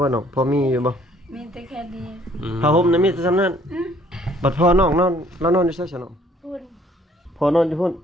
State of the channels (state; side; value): normal; both; correlation 0.61